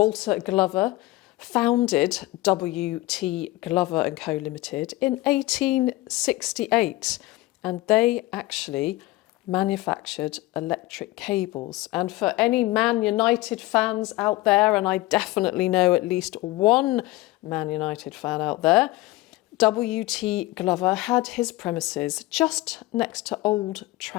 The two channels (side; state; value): right; quieter; 19.1 dB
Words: Glover founded W.T. Glover & Co Limited in 1868, and they actually manufactured electric cables. And for any Man United fans out there, and I definitely know at least one Man United fan out there, W.T. Glover had his premises just next to Old